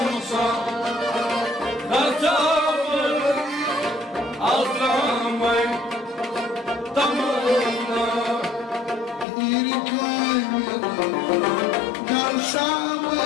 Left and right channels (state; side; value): drops out; right; at 9.2 s